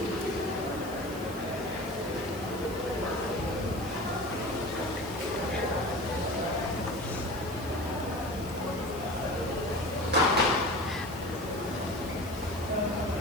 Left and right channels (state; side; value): noise; right; hiss, 16 dB below the sound